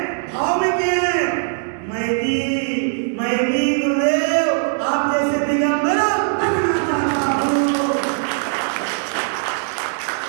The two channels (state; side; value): silent; left; digital silence